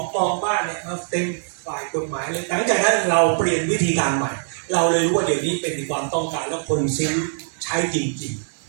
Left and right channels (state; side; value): silent; left; 61 dB below the other